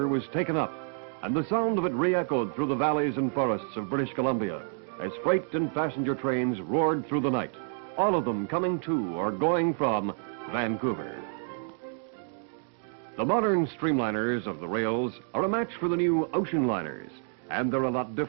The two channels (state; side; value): silent; left; 59 dB below the other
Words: was taken up, and the sound of it re-echoed through the valleys and forests of British Columbia as freight and passenger trains roared through the night, all of them coming to or going from Vancouver. The modern streamliners of the rails are a match for the new ocean liners, and they're a lot